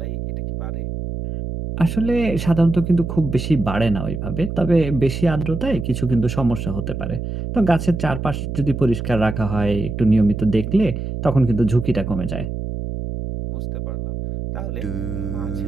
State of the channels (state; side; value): noise; right; hum, 5 dB below the sound